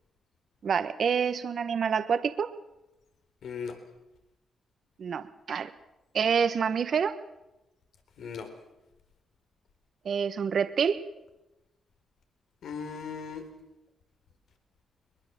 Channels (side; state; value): left; quieter; 5.9 dB